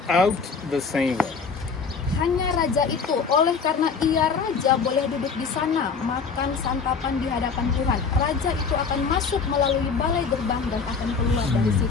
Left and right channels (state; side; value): quieter; right; 5.3 dB